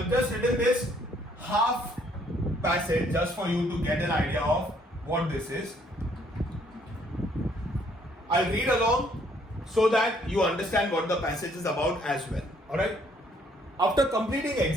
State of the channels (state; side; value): normal; both; correlation 0.65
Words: just written this half passage just for you to get an idea of what this is. I'll read along so that you understand what the passage is about as well. Alright, after completing